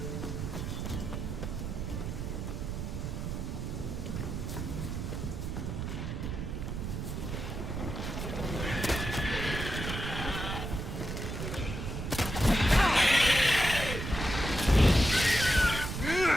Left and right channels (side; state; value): right; noise; rumble, 4 dB below the sound